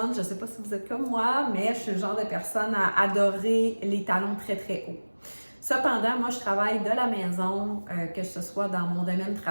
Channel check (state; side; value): inverted; both; correlation -1.00